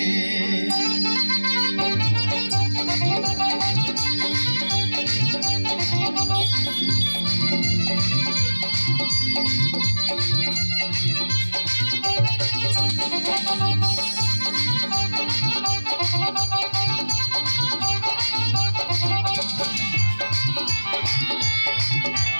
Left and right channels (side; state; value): both; inverted; correlation -1.00